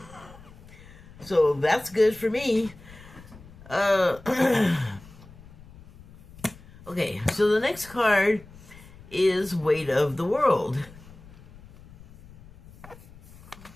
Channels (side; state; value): left; noise; rumble, 21 dB below the sound